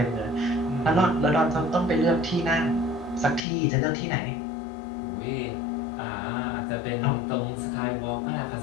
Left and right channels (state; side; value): drops out; right; at 3.4 s